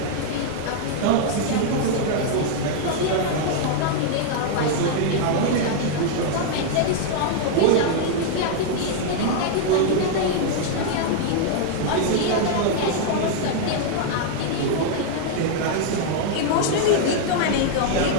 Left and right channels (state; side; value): different; both; correlation 0.00